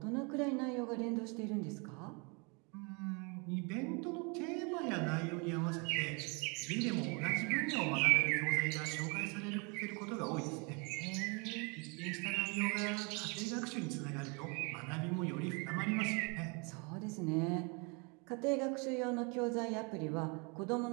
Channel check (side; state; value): left; quieter; 32.2 dB